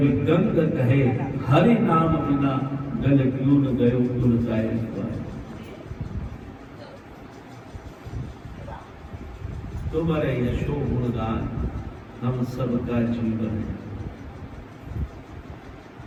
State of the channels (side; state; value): both; identical; correlation 1.00